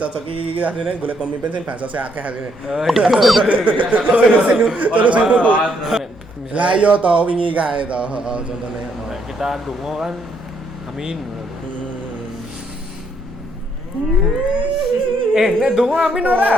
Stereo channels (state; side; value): normal; both; correlation 0.72